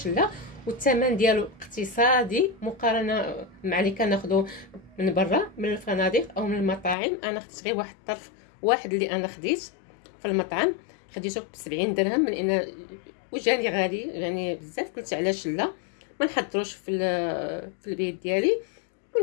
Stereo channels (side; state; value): right; drops out; at 7.0 s